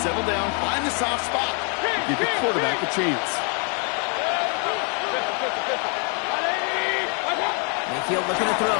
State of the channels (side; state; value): right; quieter; 37.9 dB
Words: settle down, find the soft spot, and give your quarterback a chance. Mayfield looking to throw